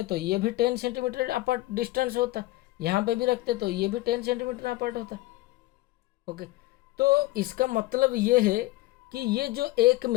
तो ये भी 10 सेंटीमीटर अपार्ट डिस्टेंस होता, यहाँ पे भी रखते तो ये भी 10 सेंटीमीटर अपार्ट होता। ओके, तो इसका मतलब ये है कि ये जो एक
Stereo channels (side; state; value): right; quieter; 18.9 dB